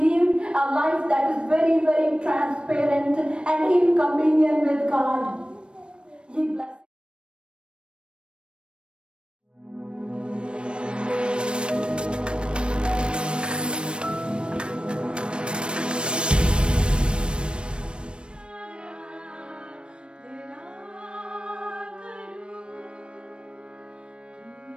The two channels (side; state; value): left; late; 0.056 ms